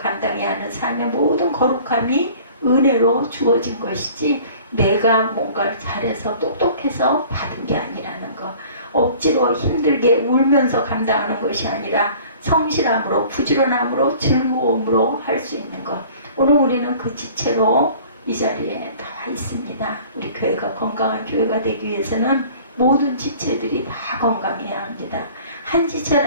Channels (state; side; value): inverted; both; correlation -0.48